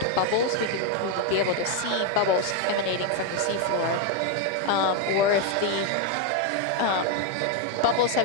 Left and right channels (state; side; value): different; both; correlation 0.01